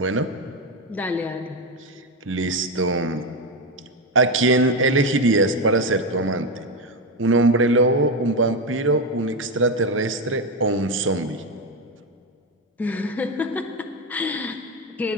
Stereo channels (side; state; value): both; normal; correlation 0.12